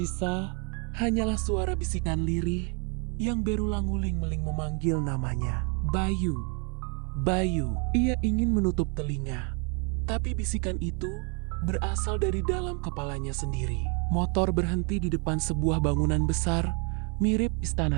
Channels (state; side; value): quieter; left; 35.8 dB